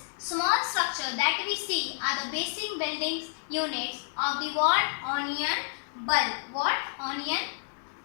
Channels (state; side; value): silent; right; digital silence